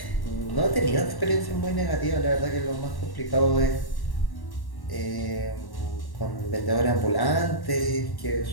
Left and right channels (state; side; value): late; right; 1.1 ms